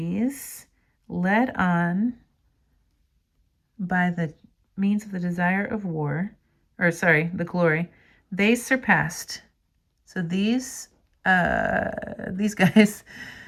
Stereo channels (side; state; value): both; identical; correlation 1.00